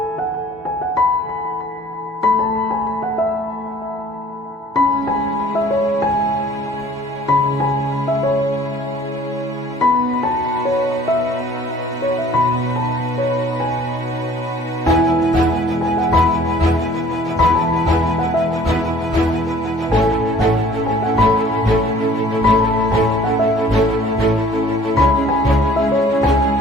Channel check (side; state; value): both; normal; correlation 0.53